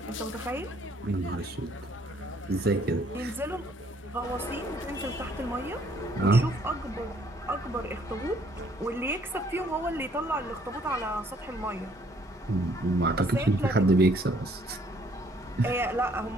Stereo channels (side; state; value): both; normal; correlation 0.63